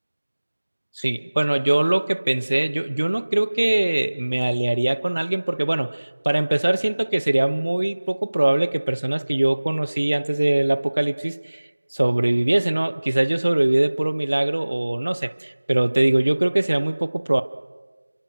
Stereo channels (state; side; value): inverted; both; correlation -1.00